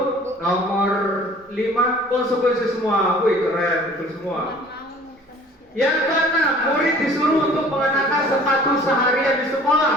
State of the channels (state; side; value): normal; both; correlation 0.50